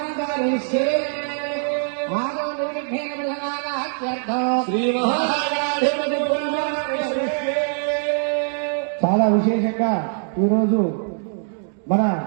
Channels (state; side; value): silent; left; digital silence